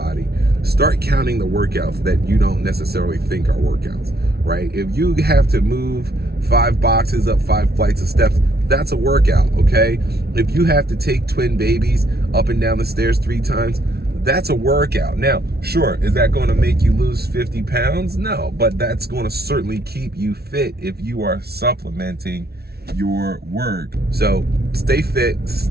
Start counting the workouts that you don't necessarily think are workouts, right? If you have to move 5 boxes up 5 flights of steps, that's a workout, okay? If you have to take twin babies up and down the stairs 3 times, that's a workout. Now, sure, is that going to make you lose 50 pounds? No, but that's going to certainly keep you fit if you are supplementing your work. So stay fit,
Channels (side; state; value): left; late; 0.45 ms